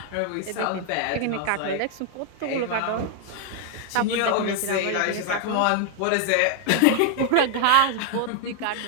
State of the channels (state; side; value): different; both; correlation 0.00